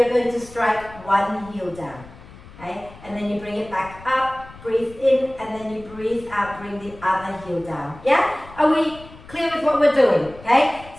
going to strike one heel down, okay? And then you bring it back up. Breathe in, and then you breathe out, bring the other heel down. Yeah? Are we clear with what we're doing? Okay?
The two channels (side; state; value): left; noise; rumble, 19 dB below the sound